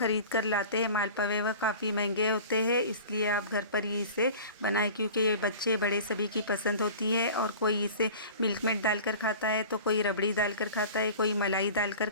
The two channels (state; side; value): inverted; both; correlation -0.39